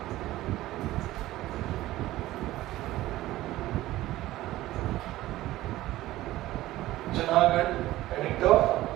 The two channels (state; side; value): quieter; left; 16.0 dB